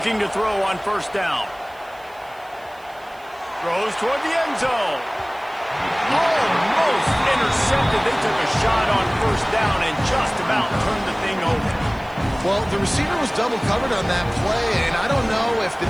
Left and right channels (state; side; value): noise; right; hiss, 28 dB below the sound